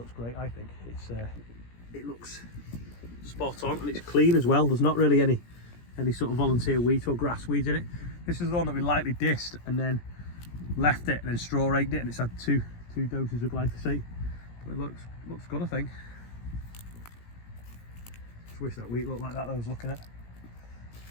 great, I think. It looks spot on, and it's clean as well. There's not really any sort of volunteer wheat or grass weeds in it. This is the one that we lightly dissed and then left it and then straw raked it, and it's had two doses of glyphosate. But it looks good, I think. Just wish that wheat looked like that I was looking at.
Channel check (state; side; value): late; right; 17 ms